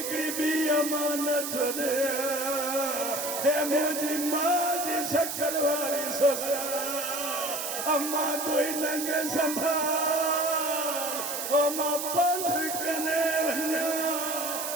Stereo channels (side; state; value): right; noise; hiss, 4 dB below the sound